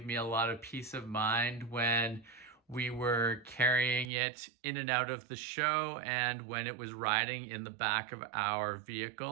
me a lot of peace of mind when we were carrying it in and out of the show and when it was riding in the back of our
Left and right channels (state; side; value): drops out; left; at 4.1 s